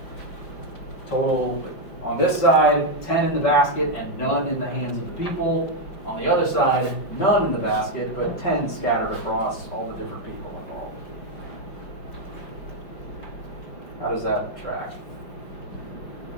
total, on this side, 10 in the basket and none in the hands of the people. On the other side, none in the basket, but 10 scattered across all the different people involved. How does that track?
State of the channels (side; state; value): right; late; 5.3 ms